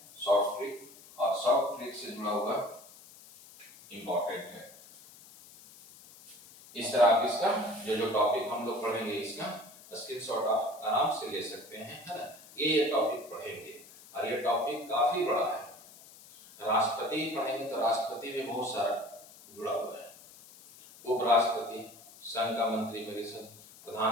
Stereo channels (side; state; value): left; noise; hiss, 21 dB below the sound